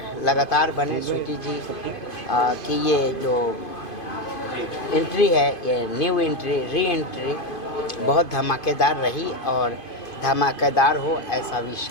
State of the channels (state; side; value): late; right; 2.5 ms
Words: लगातार बने। स्वीटी जी की ये जो एंट्री है, ये न्यू एंट्री, री एंट्री बहुत धमाकेदार रही और धमाकेदार हो ऐसा विश